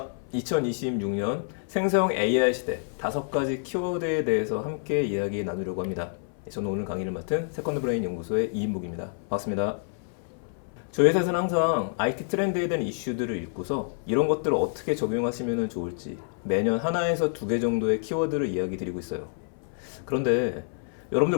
2026년 생성 AI 시대 5가지 키워드에 대해서 함께 이야기 나누려고 합니다. 저는 오늘 강의를 맡은 세컨드 브레인 연구소의 이인묵입니다. 반갑습니다. 저희 회사에서는 항상 IT 트렌드에 대한 이슈들을 읽고서 이런 것들을 어떻게 적용하시면 좋을지 매년 하나에서 2개 정도의 키워드를 이야기 드리고 있어요. 그런데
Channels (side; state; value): right; silent; 58 dB below the other